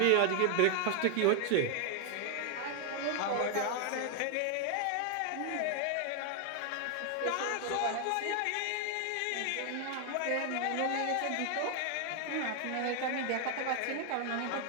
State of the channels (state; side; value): different; both; correlation 0.00